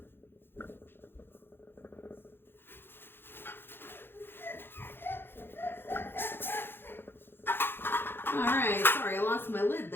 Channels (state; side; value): late; right; 0.10 ms